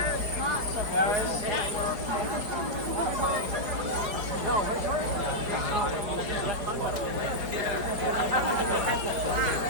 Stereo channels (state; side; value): late; left; 4.8 ms